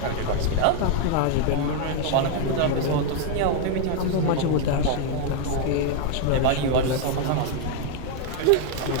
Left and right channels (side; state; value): both; different; correlation 0.00